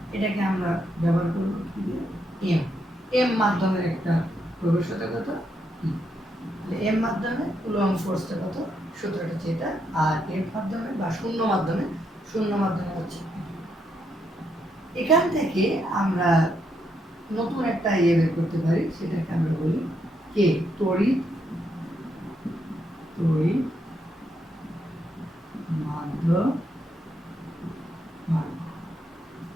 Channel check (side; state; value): both; normal; correlation 0.78